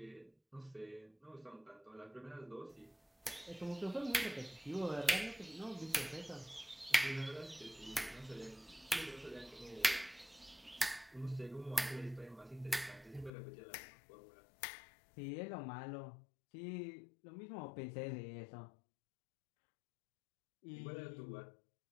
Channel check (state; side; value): drops out; right; at 13.3 s